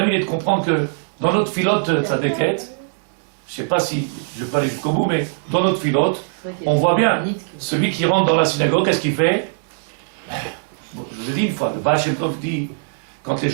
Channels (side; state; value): left; silent; digital silence